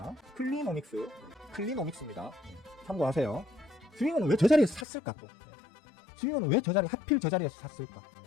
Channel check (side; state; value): right; drops out; at 4.9 s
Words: 클리노믹스입니다. 참고하세요. 스윙어는 왜 저 자리에서 샀을까? 또 스윙어는 왜 하필 저 자리에서 샀을까?